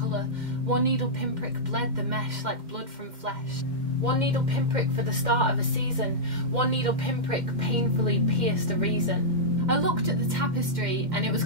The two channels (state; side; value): late; left; 2.1 ms